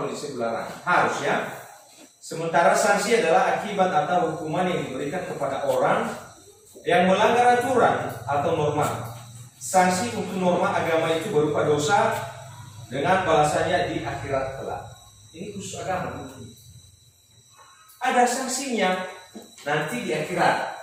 disebut larangan, harus ya. Sementara sanksi adalah akibat atau hukuman yang diberikan kepada orang yang melanggar aturan atau norma. Sanksi untuk norma agama itu berupa dosa dengan balasannya di akhirat kelak. Ini khusus agama. Ada sanksinya nanti di akhirat.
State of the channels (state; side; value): identical; both; correlation 1.00